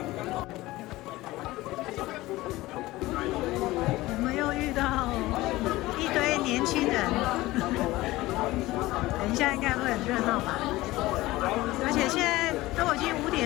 我们又遇到一堆年轻人，等一下应该会很热闹吧？而且现在都已经5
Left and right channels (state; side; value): quieter; right; 18.5 dB